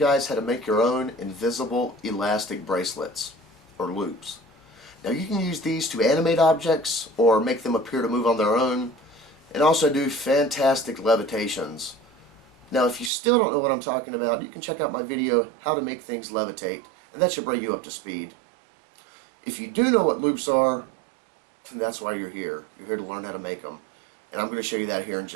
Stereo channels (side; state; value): left; drops out; at 13.1 s